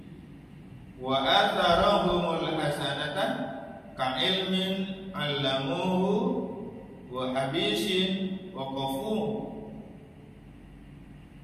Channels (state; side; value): identical; both; correlation 1.00